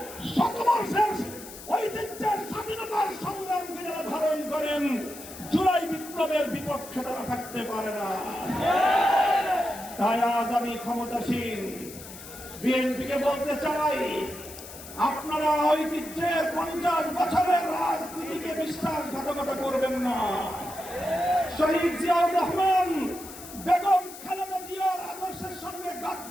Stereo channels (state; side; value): noise; left; hiss, 14 dB below the sound